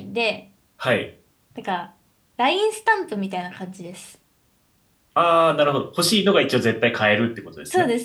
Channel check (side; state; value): both; identical; correlation 1.00